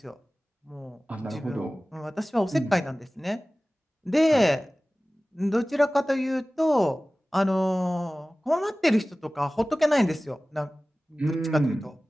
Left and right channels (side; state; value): both; normal; correlation 0.97